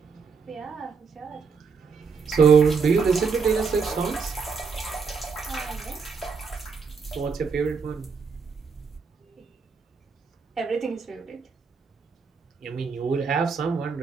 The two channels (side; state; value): left; quieter; 5.4 dB